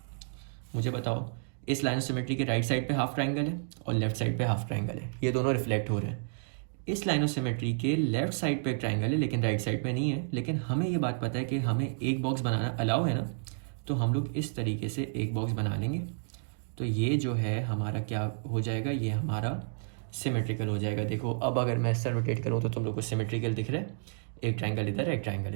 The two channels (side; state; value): left; silent; digital silence